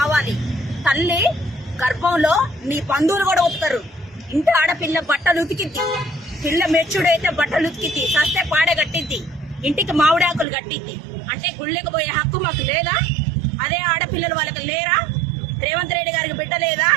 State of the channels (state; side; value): drops out; left; at 10.5 s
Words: తల్లి గర్భంలో నీ బంధువులు కూడా ఉతుతారు. ఇంటి ఆడపిల్ల బట్టలు ఉతికిద్ది, పిల్ల మెచ్చుడైతే బట్టలు ఉతికిద్ది, సస్తే పాడే కట్టిద్ది, ఇంటికి మామిడాకులు కట్టిద్ది. అంటే గుళ్ళకి పోయే హక్కు మాకు లేదా? అదే ఆడపిల్లలు వాళ్ళకి లేరా? రేవంత్ రెడ్డి గారికి బిడ్డ లేదా?